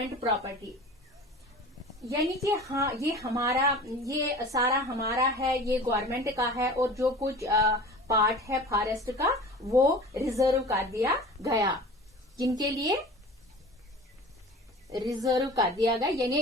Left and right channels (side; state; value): both; normal; correlation 0.39